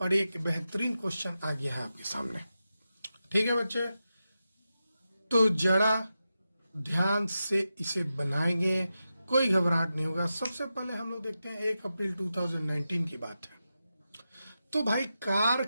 और एक बेहतरीन क्वेश्चन आ गया है आपके सामने। ठीक है बच्चे, तो जरा ध्यान से इसे बनाएंगे, कोई घबराहट नहीं होगा। सबसे पहले हम लोग देखते हैं 1 अप्रैल 2019 की बात है। तो भाई कार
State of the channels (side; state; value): both; inverted; correlation -0.90